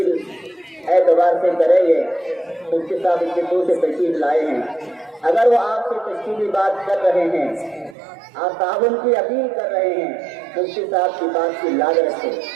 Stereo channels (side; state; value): left; drops out; at 8.0 s